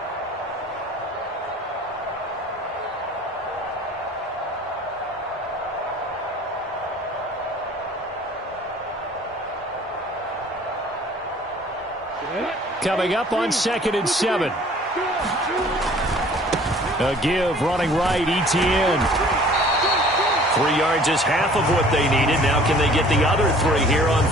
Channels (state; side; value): normal; both; correlation 0.51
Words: Coming up on 2nd and 7. A give running right, Etienne. 3 yards is half of what they needed. Now can they get the other 3 here on